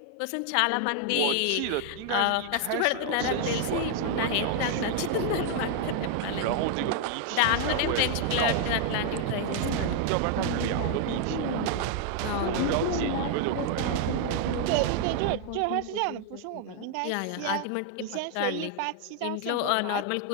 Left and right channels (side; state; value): both; different; correlation 0.00